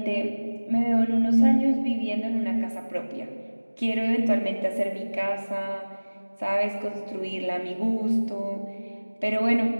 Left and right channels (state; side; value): inverted; both; correlation -1.00